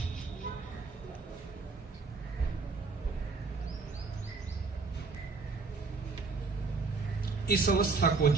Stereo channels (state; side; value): quieter; left; 4.3 dB